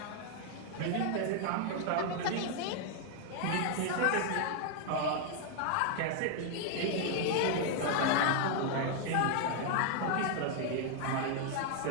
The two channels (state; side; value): different; both; correlation 0.00